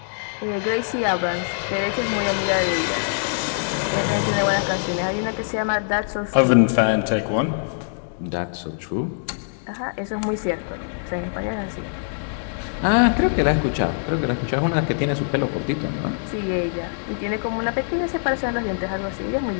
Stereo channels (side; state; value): right; silent; digital silence